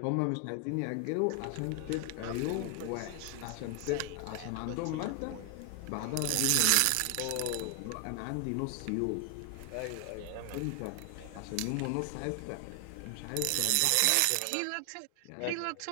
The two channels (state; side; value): different; both; correlation 0.00